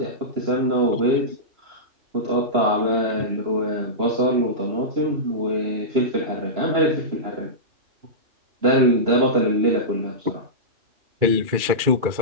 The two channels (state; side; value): late; left; 2.4 ms